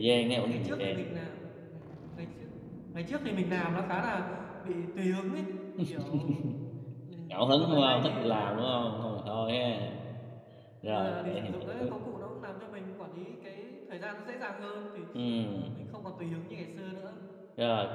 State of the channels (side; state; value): both; identical; correlation 1.00